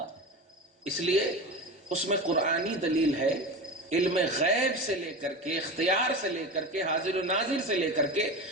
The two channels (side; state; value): both; normal; correlation 0.26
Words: اس لیے اس میں قرآنی دلیل ہے. علم غیب سے لے کر کے, اختیار سے لے کر کے, حاضر و ناظر سے لے کر کے,